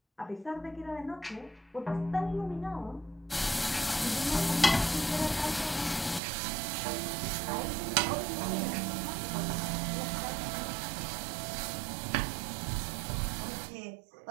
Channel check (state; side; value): drops out; left; at 6.2 s